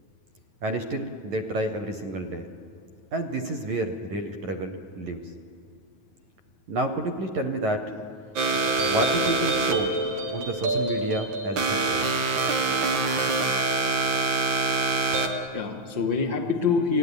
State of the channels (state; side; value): late; left; 9.3 ms